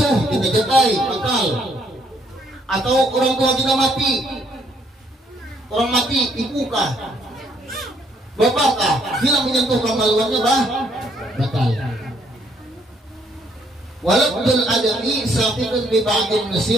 kita jatai batal. Atau orang tua kita mati. Orang mati ibukah? Bapakkah? Bila menyentuh kemaluannya batal. Walabdul adami saqitun bi ba'dil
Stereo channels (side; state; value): both; normal; correlation 0.69